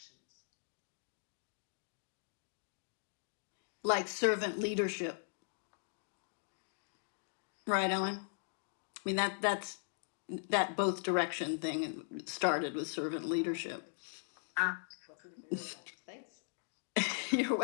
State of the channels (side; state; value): right; silent; digital silence